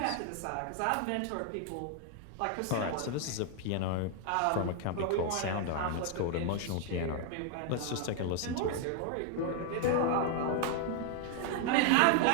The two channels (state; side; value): different; both; correlation 0.00